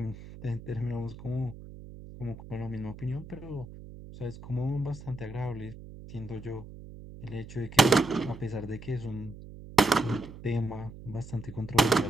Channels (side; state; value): right; noise; hum, 15 dB below the sound